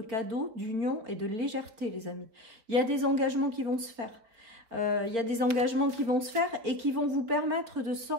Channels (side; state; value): left; late; 4.8 ms